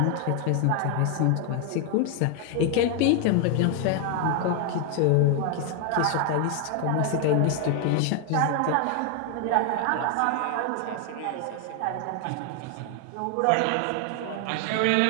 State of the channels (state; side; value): different; both; correlation 0.00